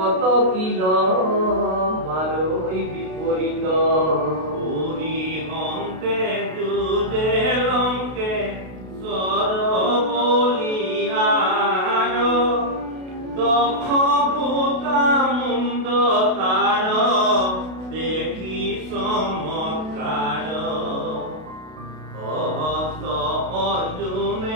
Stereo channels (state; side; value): late; left; 32 ms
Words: কিল মাৰৈ বিপৰীত